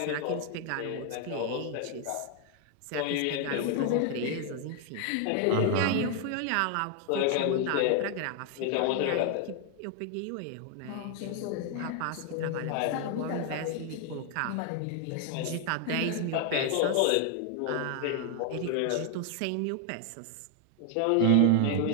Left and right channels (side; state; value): both; different; correlation 0.00